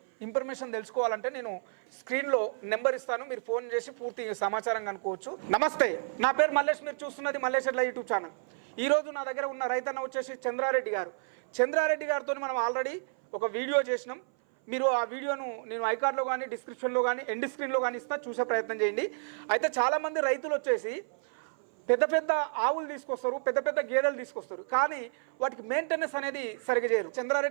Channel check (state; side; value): silent; left; 56 dB below the other